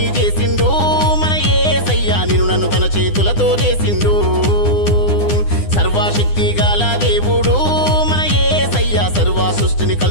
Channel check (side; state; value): right; late; 9.9 ms